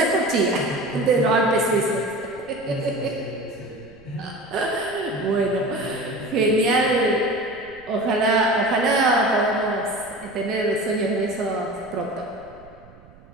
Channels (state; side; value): noise; right; rumble, 24 dB below the sound